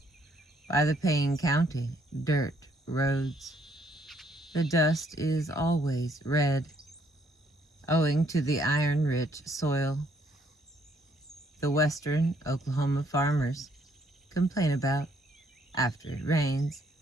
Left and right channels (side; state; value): both; normal; correlation 0.68